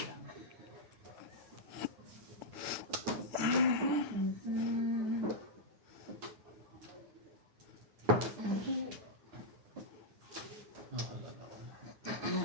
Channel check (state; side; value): late; left; 9.0 ms